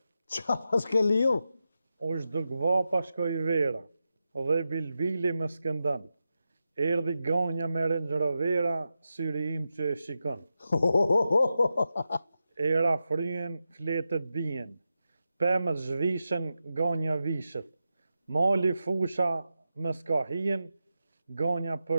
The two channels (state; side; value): inverted; both; correlation -0.89